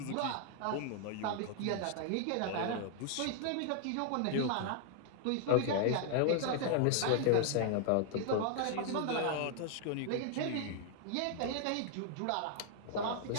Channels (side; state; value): both; different; correlation 0.00